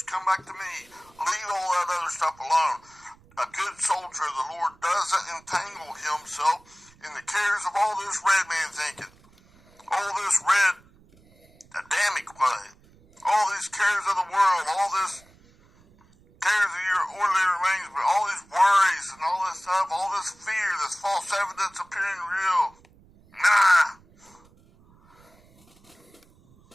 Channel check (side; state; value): right; noise; rumble, 29 dB below the sound